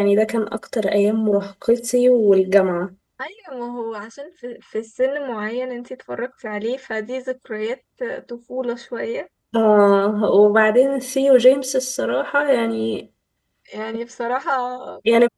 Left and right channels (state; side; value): identical; both; correlation 1.00